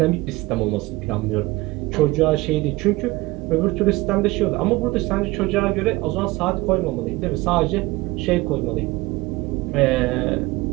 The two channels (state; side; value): quieter; left; 20.9 dB